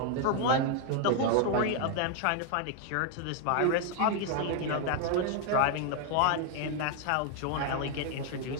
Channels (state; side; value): different; both; correlation 0.00